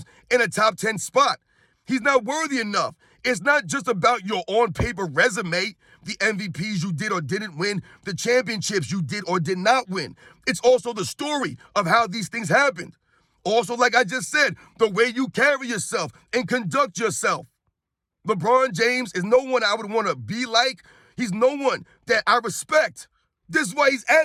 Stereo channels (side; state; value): both; identical; correlation 1.00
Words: in a top 10 spot. He's not worthy enough. It's not just about your on-paper resume, the MVPs you did or didn't win, the championships you did or did not win. It's also the story of how these things happened. Also, like I just said, the way you carry yourself and conduct yourself. LeBron James is no one I would want to be like. He's no one that I respect. This is why he's